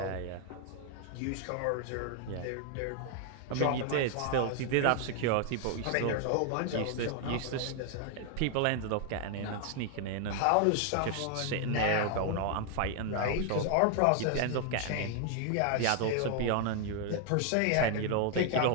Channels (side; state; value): both; different; correlation 0.00